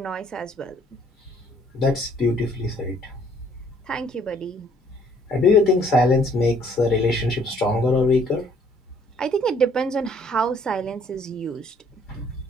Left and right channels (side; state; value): both; normal; correlation 0.61